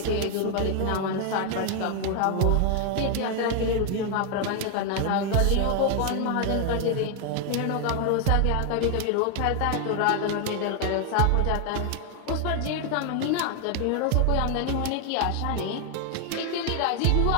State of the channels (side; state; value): both; different; correlation 0.00